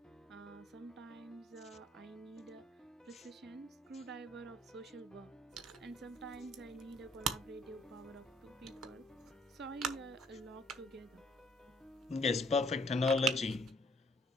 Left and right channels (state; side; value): normal; both; correlation 0.63